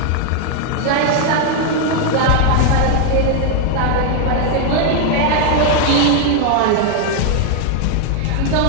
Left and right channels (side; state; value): both; different; correlation 0.00